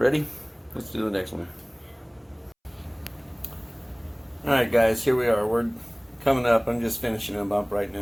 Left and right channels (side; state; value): both; identical; correlation 1.00